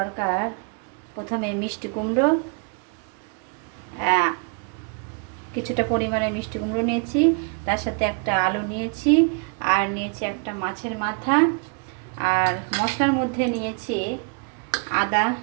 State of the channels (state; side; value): quieter; left; 36.4 dB